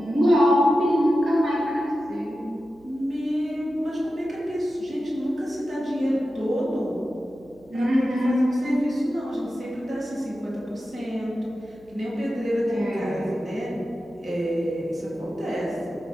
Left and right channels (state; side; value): noise; right; hum, 29 dB below the sound